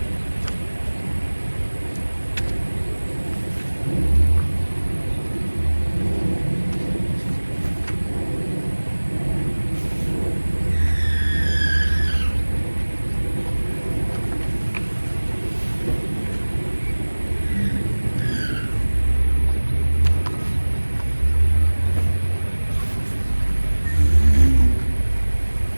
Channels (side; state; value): both; inverted; correlation -1.00